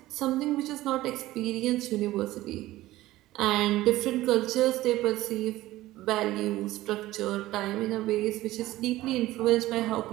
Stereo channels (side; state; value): left; quieter; 16.5 dB